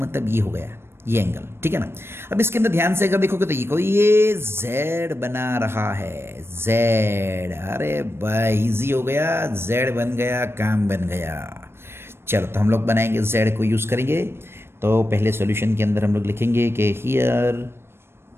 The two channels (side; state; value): left; late; 0.12 ms